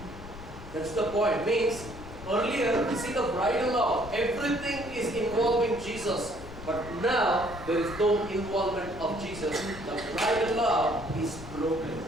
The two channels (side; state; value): left; noise; rumble, 14 dB below the sound